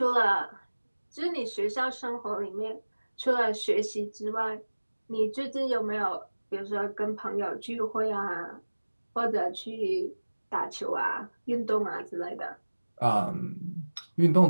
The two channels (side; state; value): both; inverted; correlation -1.00